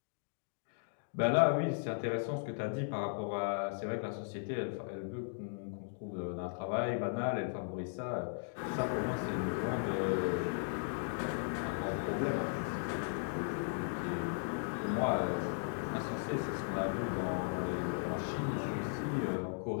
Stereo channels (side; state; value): right; silent; digital silence